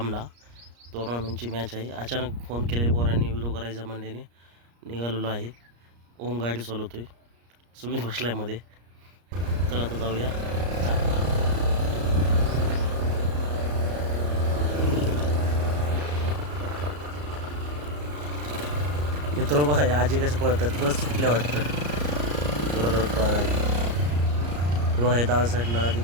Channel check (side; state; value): left; late; 34 ms